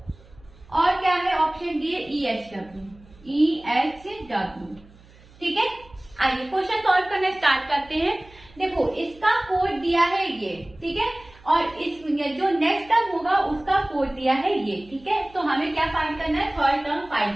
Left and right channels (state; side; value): noise; right; hum, 25 dB below the sound